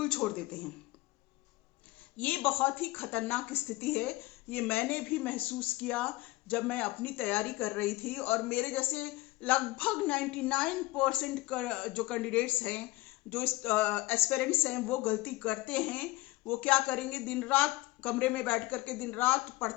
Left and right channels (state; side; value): quieter; right; 20.4 dB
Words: छोड़ देते हैं। ये बहुत ही खतरनाक स्थिति है। ये मैंने भी महसूस किया जब मैं अपनी तैयारी कर रही थी, और मेरे जैसे लगभग 99% जो कैंडिडेट्स हैं, जो एस्पिरेंट्स हैं, वो गलती करते हैं। वो क्या करेंगे, दिन रात कमरे में बैठ करके दिन रात